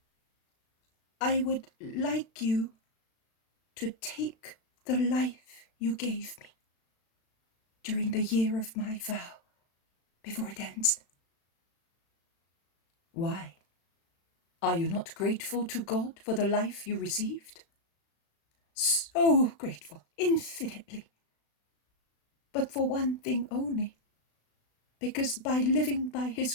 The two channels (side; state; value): right; late; 36 ms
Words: I would like you to take the life you gave me during the year of my vow, before it ends." Why? Are you not grateful to God for the life you received? so grateful, infinitely. But for one thing only, because by living by his